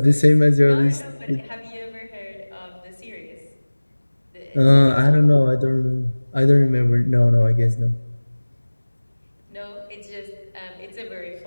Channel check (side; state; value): both; inverted; correlation -1.00